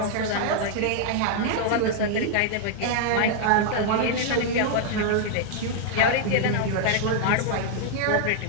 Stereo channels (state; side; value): different; both; correlation 0.00